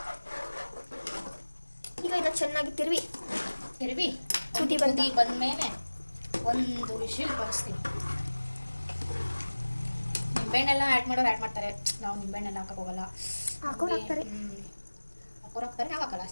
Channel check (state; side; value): inverted; both; correlation -1.00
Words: ಈಗ ಇದನ್ನು ಚೆನ್ನಾಗಿ ತಿರುವಿ ಕುದಿ ಬಂದಮೇಲೆ ಒಂದು ವಿಷಲ್ ಬರೆಸ್ತೀನಿ. ನಿಂಬೆಹಣ್ಣೆಲ್ಲ ಆ್ಯಡ್ ಮಾಡೋರು ಆ್ಯಡ್ ಮಾಡ್ತಾರೆ, ನಾವು ನಿಂಬೆಹಣ್ಣೆಲ್ಲ ಹಾಕಕ್ಕೆ ಹೋಗಲ್ಲ. ಹಾಕೋರು ಹಾಕ್ತಾರೆ, ನಾವು ಹಾಕಲ್ಲ